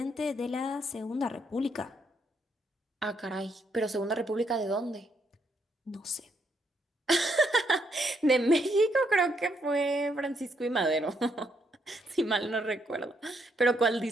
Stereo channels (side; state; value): both; normal; correlation 0.75